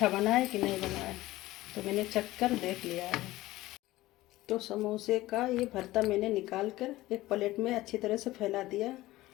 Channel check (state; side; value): quieter; right; 17.3 dB